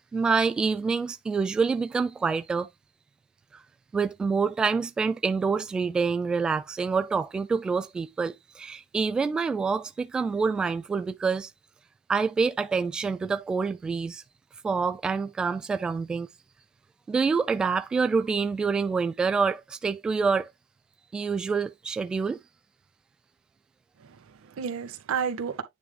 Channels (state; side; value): quieter; left; 4.7 dB